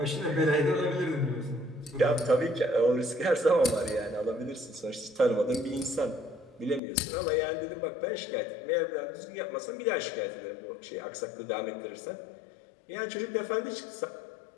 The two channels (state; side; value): drops out; right; at 6.8 s